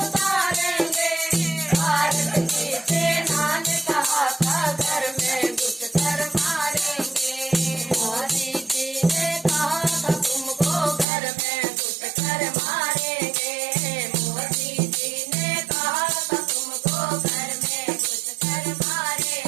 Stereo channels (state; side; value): drops out; left; at 11.1 s